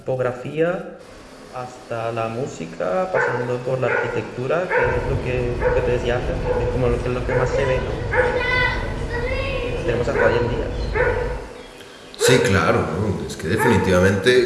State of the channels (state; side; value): identical; both; correlation 1.00